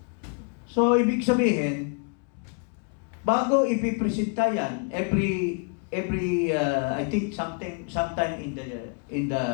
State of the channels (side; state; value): right; quieter; 39.2 dB